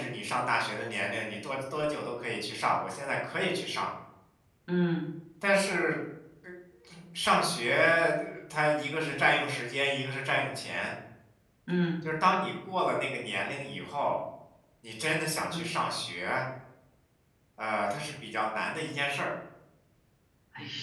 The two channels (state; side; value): identical; both; correlation 1.00